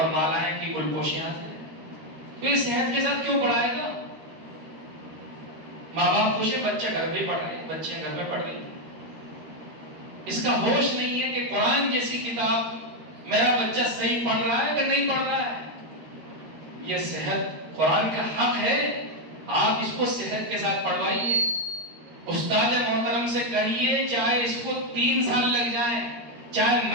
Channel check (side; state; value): left; late; 13 ms